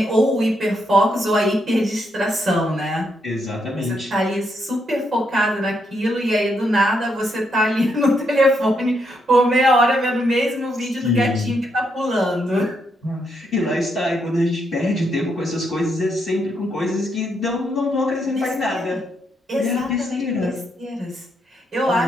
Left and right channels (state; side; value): normal; both; correlation 0.78